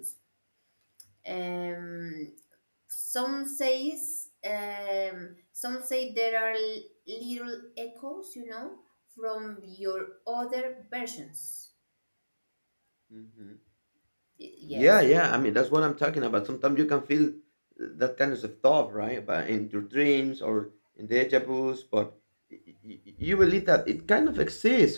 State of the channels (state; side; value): inverted; both; correlation -1.00